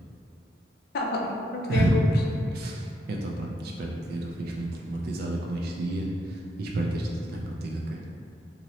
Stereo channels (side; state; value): both; normal; correlation 0.77